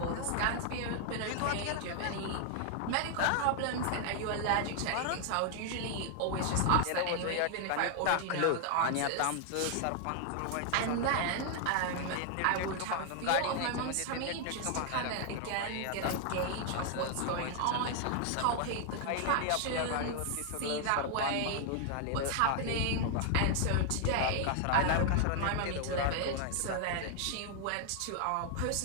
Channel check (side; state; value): both; different; correlation 0.00